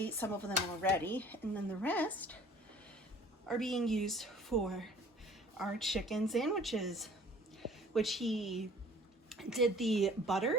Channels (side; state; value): both; normal; correlation 0.51